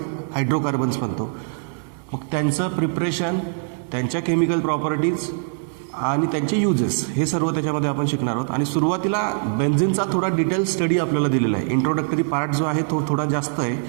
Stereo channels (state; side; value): silent; left; digital silence